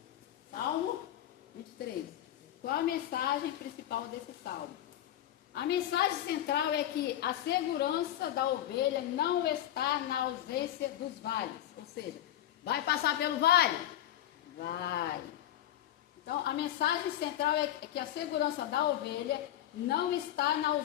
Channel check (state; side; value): quieter; right; 12.3 dB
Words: Salmo 23. Qual a mensagem principal desse salmo? A mensagem central é que a segurança da ovelha não está na ausência dos vales. Ou seja, vai passar pelo vale? Vai. Então, a mensagem central é que a segurança da ovelha não está na